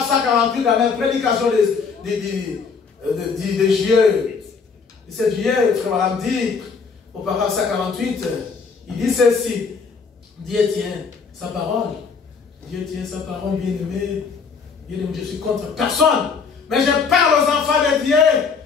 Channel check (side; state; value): right; quieter; 5.4 dB